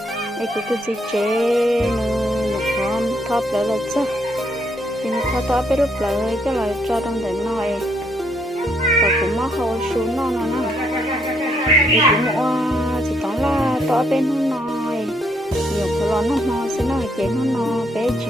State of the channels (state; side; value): normal; both; correlation 0.72